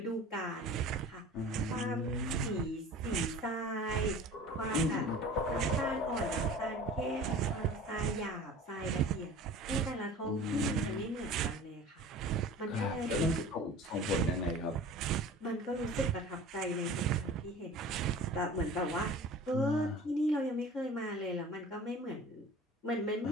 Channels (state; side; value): normal; both; correlation 0.41